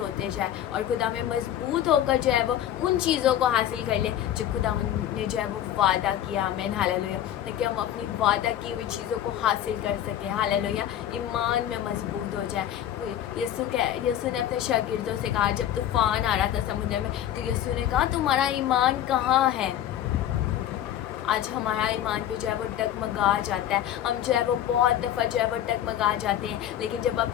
जाए और खुदा में मजबूत होकर जो है वो उन चीज़ों को हासिल कर ले जो खुदा ने जो है वो वादा किया। आमीन, हालेलुया। ताकि हम अपनी वादा की हुई चीज़ों को हासिल कर सकें। हालेलुया। ईमान में मजबूत हो जाए। यीशु ने अपने शागिर्दों से कहा, जब तूफान आ रहा था समुद्र में, तो यीशु ने कहा तुम्हारा ईमान कहाँ है। आज हमारा ईमान भी जो है वो डगमगा जाता है। हम जो है वो बहुत दफ़ा जो है वो डगमगा जाते हैं, लेकिन जब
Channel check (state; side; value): quieter; right; 11.3 dB